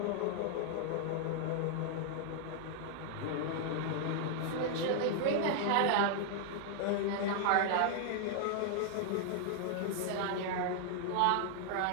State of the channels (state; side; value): different; both; correlation 0.00